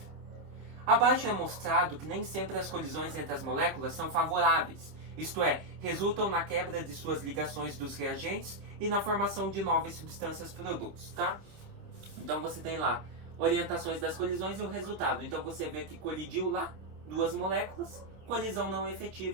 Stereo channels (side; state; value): left; late; 26 ms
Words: Abaixo é mostrado que nem sempre as colisões entre as moléculas são favoráveis, isto é, resultam na quebra de suas ligações dos reagentes e na formação de novas substâncias produtos, tá? Então você tem lá orientações das colisões e o resultado. Então você vê que colidiu lá duas moléculas, colisão não